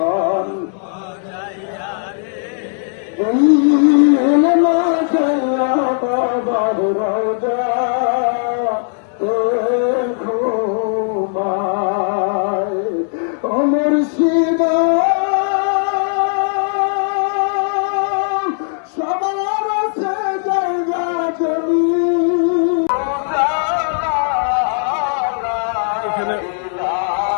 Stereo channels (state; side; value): silent; right; digital silence